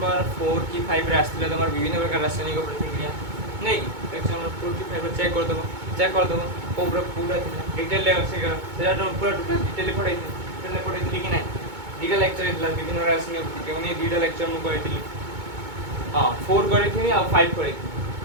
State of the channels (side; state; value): left; late; 2.2 ms